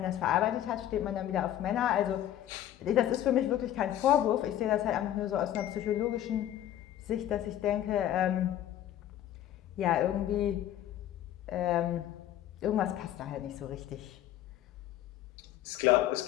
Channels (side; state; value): right; quieter; 12.0 dB